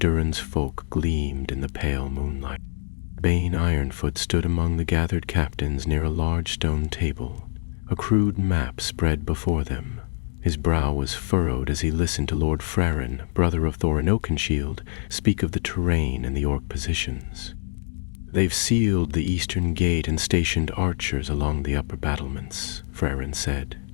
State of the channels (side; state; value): right; silent; 62 dB below the other